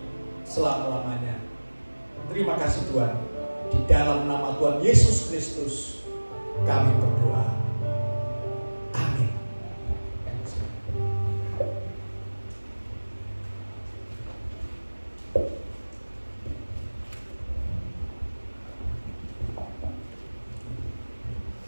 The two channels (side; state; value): both; inverted; correlation -1.00